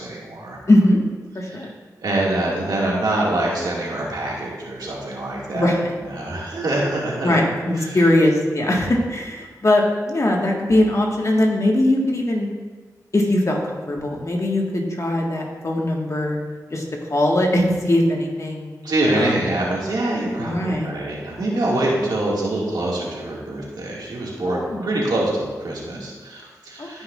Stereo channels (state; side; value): normal; both; correlation 0.84